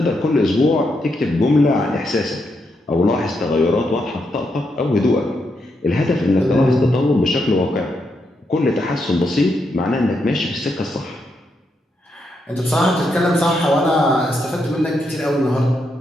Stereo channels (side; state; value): both; normal; correlation 0.81